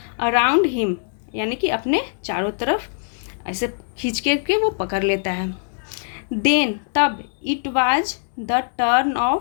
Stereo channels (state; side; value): silent; right; digital silence